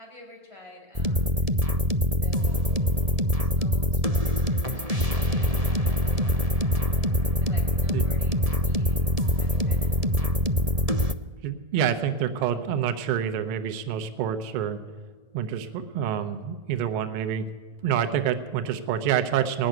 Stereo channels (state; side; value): late; left; 1.7 ms